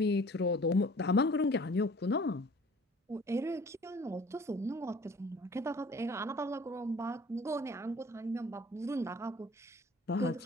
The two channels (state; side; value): normal; both; correlation 0.50